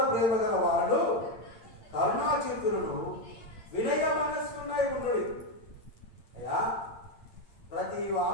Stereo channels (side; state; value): right; late; 8.8 ms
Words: ప్రేమ గల వాడు కరుణాచిత్తులను వినయ మనస్కున్నై ఉండుడి. అయ్యా, ప్రతి